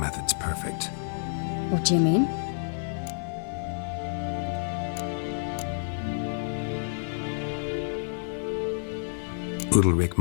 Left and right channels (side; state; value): right; silent; digital silence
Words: perfect. What do you mean? Udalric